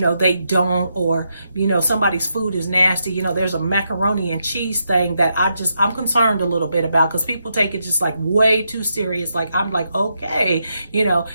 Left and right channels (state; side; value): inverted; both; correlation -0.82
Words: they don't, or somebody's food is nasty. There's a macaroni and cheese thing that I'm concerned a little bit about, because people take it just like way too serious. Like, I'm like, okay,